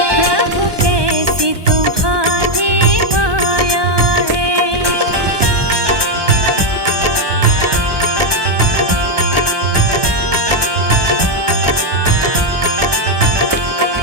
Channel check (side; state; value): left; late; 1.2 ms